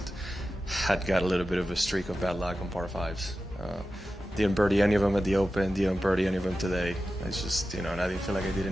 had got a little bit of a streak of bad luck on par fives. Didn't birdie any of them at the Open, didn't birdie any of them today. It's just, and I didn't feel like I did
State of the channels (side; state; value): both; normal; correlation 0.93